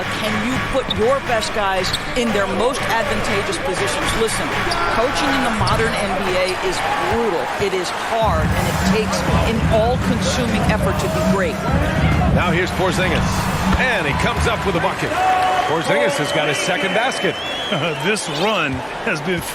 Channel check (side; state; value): both; identical; correlation 1.00